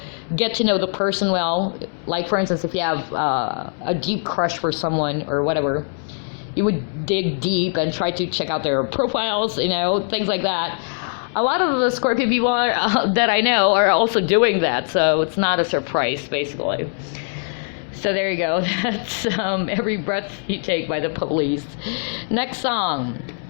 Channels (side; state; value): right; silent; 65 dB below the other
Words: get to know the person well. Like, for instance, if you have a deep crush for someone or whatever, you would dig deep and try to check out their profiles, things like that. A lot of the Scorpio people that I know are also doing that, so it's not a surprise, basically. So there you go. That's Every Breath You Take by The Police. Next song,